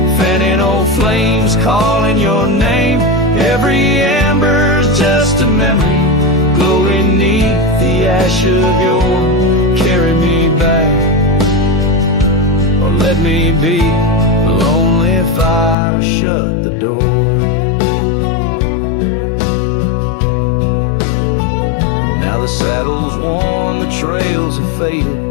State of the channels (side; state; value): right; drops out; at 15.8 s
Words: fanning old flames calling your name. Every ember's just a memory glowing neath the ash of your carry me back, or let me be. Lonely fire shut the door. Now the saddle's worn, the trails have faded,